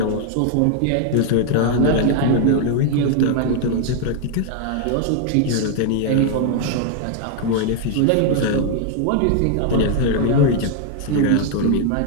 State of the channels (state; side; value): different; both; correlation 0.00